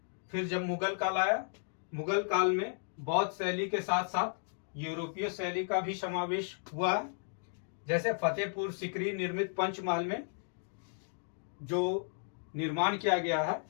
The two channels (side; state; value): right; silent; digital silence